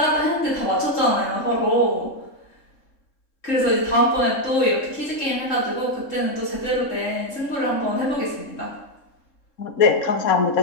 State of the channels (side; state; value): right; late; 3.7 ms